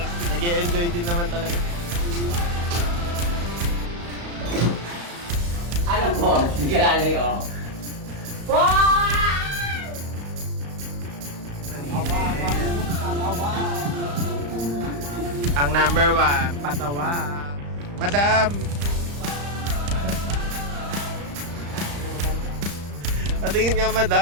Nag-e-enjoy din naman talaga. Ano po? Hindi ka lalay, oh. Ang number 1, patawa. Madam! Patingin nga,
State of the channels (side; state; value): left; late; 35 ms